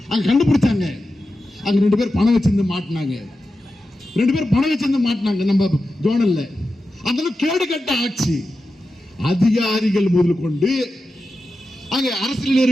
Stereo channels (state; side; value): normal; both; correlation 0.91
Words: அங்க கண்டுபிடிச்சாங்க, அங்க 2 பேர் பணம் வச்சிருந்து மாட்டினாங்க. நம்ம ஜோனல்ல. அந்த கேடு கட்ட ஆட்சி. அதிகாரிகள் முதல் கொண்டு அங்க அரசியல்